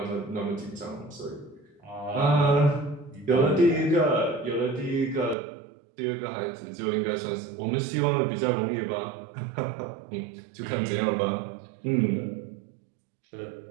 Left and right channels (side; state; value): left; drops out; at 5.4 s